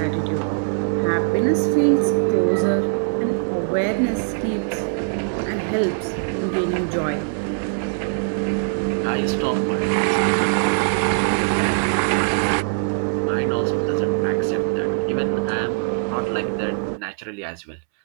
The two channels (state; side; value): silent; left; 64 dB below the other